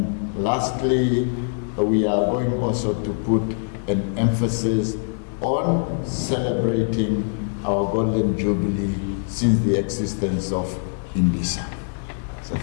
lastly, we are going also to put an emphasis on celebrating our Golden Jubilee since the existence of IMBISA. So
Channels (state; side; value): silent; right; digital silence